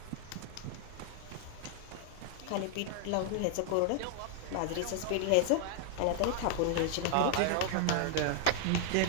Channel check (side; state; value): both; different; correlation -0.01